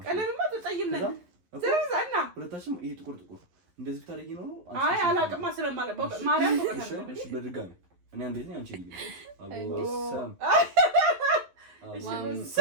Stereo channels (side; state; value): left; late; 11 ms